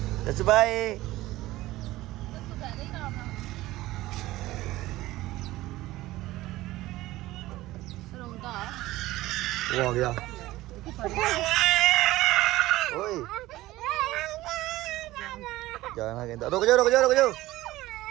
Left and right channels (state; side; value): quieter; left; 17.2 dB